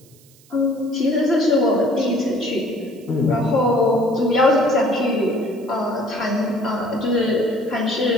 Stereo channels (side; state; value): right; noise; hiss, 28 dB below the sound